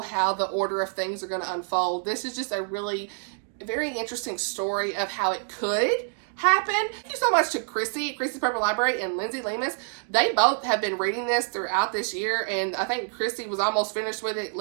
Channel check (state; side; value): silent; left; 58 dB below the other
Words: how the order of things are going to unfold. This is just a really very interesting story of how it could happen. Thank you so much to Chrissy's Purple Library and Lindsay Lemus. They both have been reading this throughout this year, and I think Chrissy was almost finished with it.